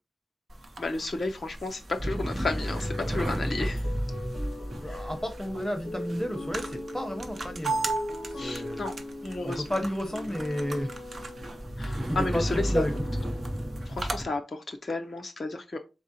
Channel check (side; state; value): both; normal; correlation 0.93